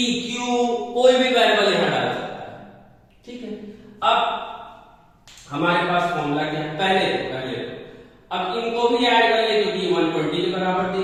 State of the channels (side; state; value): both; identical; correlation 1.00